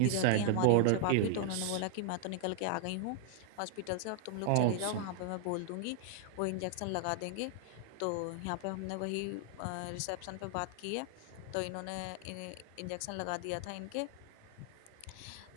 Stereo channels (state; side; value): different; both; correlation 0.00